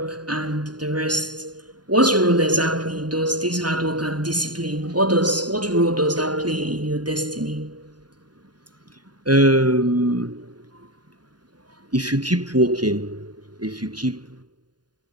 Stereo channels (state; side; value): late; left; 0.70 ms